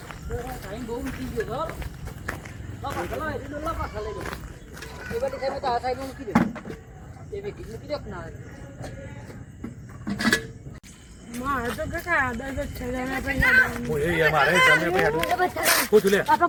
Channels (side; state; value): both; identical; correlation 1.00